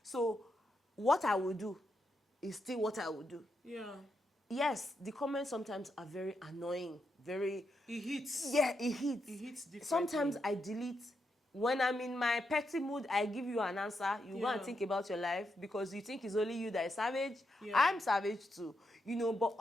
So what I will do is still what I will do. Yeah. Yes, the comments sometimes are very annoying, very... It hits. Yeah, it hits. It hits differently. Sometimes I delete. When I'm in my petty mood, I give you an answer. You go and think about your life, because you think it's only you that is savage. Yeah. I'm savage too. But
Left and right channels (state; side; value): normal; both; correlation 0.83